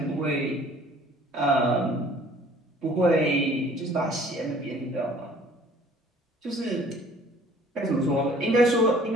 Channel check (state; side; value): normal; both; correlation 0.53